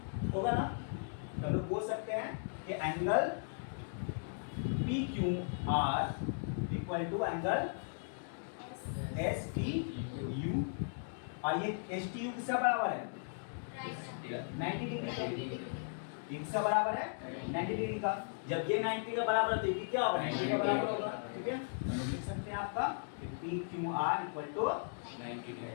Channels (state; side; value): silent; right; digital silence